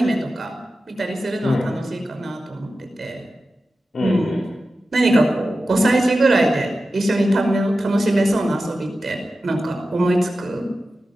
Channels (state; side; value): normal; both; correlation 0.93